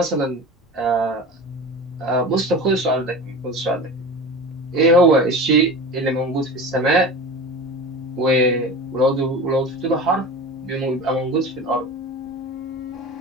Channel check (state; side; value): normal; both; correlation 0.33